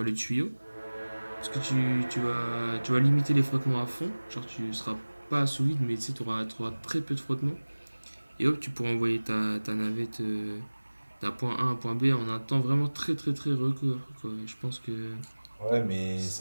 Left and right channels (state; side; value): inverted; both; correlation -1.00